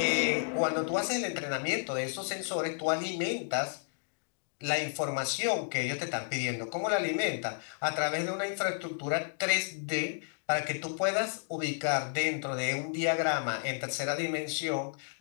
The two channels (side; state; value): right; silent; digital silence